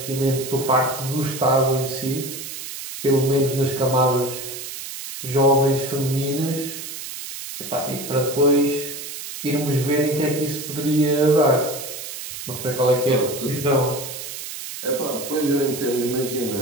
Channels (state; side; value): noise; right; hiss, 9 dB below the sound